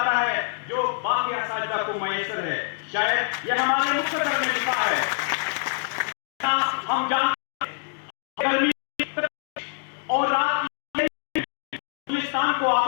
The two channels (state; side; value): silent; right; digital silence